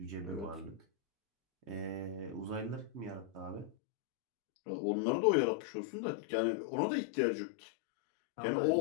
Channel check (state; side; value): drops out; right; at 3.7 s